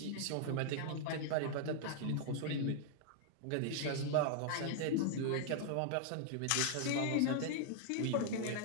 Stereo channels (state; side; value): different; both; correlation -0.01